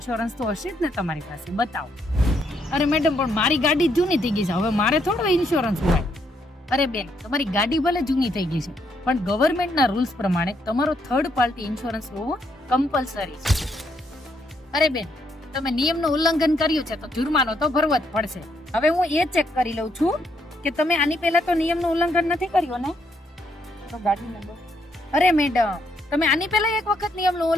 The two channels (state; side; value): normal; both; correlation 0.74